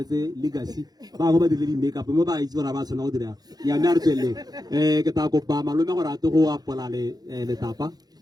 legacy ba go ba dire di make up mo ba itse bona ba tsona go dira ya me a re tswelle ke ta kopa malome gore a te go apola le tapa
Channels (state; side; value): late; left; 0.19 ms